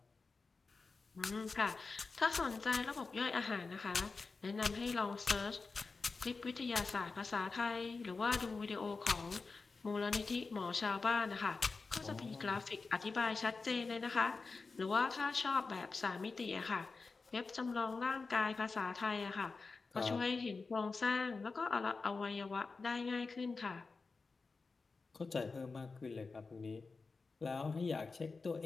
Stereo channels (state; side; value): quieter; right; 4.2 dB